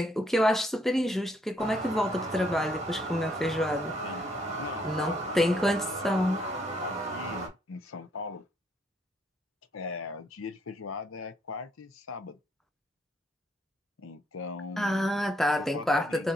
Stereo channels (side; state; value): both; normal; correlation 0.71